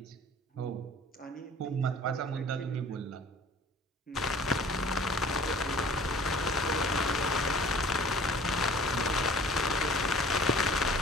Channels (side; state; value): both; normal; correlation 0.49